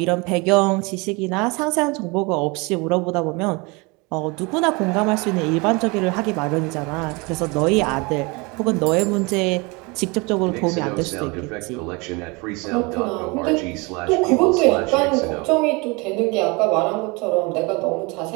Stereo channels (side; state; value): left; quieter; 27.4 dB